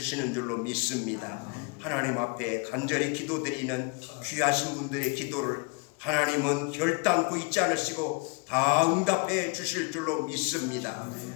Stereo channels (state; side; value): quieter; right; 31.0 dB